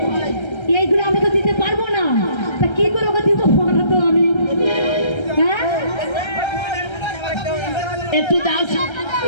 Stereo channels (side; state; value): right; late; 1.3 ms